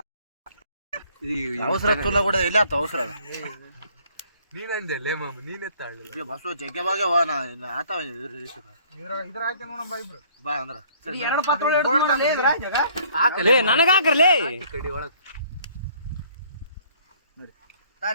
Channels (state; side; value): inverted; both; correlation -0.58